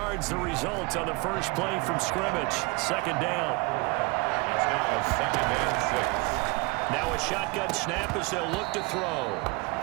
the result on the first play from scrimmage. Second down. It's now second and 6. Now a shotgun snap as they'll look to throw.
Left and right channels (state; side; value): quieter; left; 27.7 dB